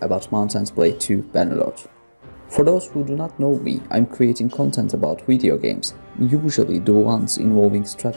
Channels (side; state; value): both; inverted; correlation -1.00